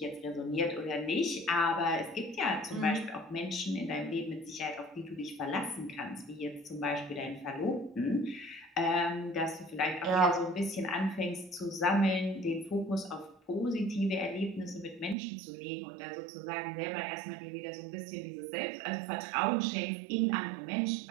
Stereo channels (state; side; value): drops out; left; at 15.2 s